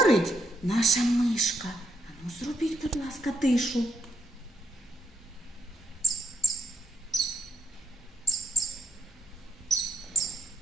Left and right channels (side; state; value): both; normal; correlation 0.74